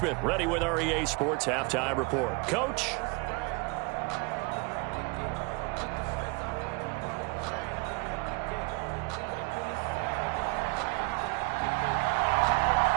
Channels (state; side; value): quieter; left; 27.7 dB